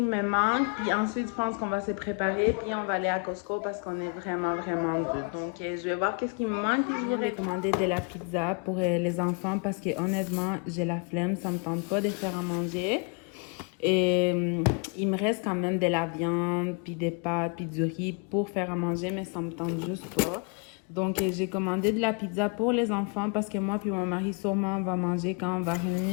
me manque. Puis ensuite, je pense qu'on va se préparer. Puis on va aller à Costco parce qu'on est vraiment deux. Donc je vais voir qu'est-ce qui me manque. Puis je vais commander de la pizza pour les enfants parce que honnêtement, j'ai la flemme. Ça me tente pas de faire à manger. Et il me reste quand même de la viande, puis des pâtes, puis du riz pour faire à manger. Mais ça me tente juste pas. Donc, j'ai commandé de la pizza pour les enfants parce que moi puis mon mari, sûrement, on va manger quand on va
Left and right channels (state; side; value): quieter; right; 36.1 dB